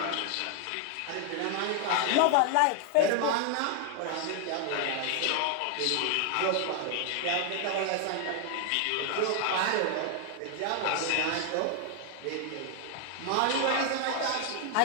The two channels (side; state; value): both; different; correlation 0.00